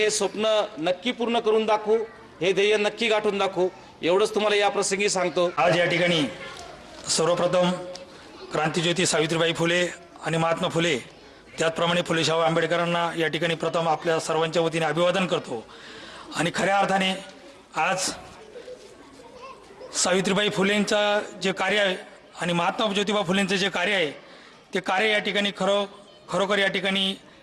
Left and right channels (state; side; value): identical; both; correlation 1.00